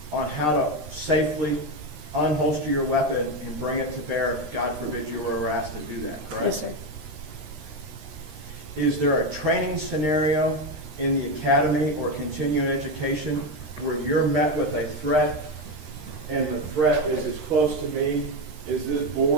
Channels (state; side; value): late; left; 13 ms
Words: on how to safely unholster your weapon and bring it to bear if, God forbid, you were asked to do that, correct? Yes, sir. Is there a training scenario in the academy or continuing education where you're met with a threat and the threat is as close to me as this